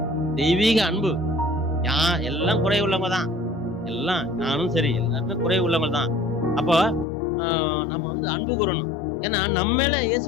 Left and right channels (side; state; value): right; drops out; at 7.1 s